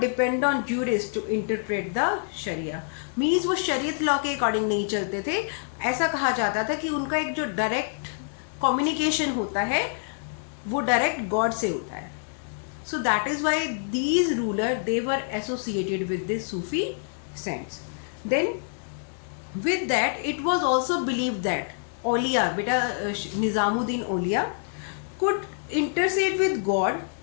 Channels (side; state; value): right; silent; digital silence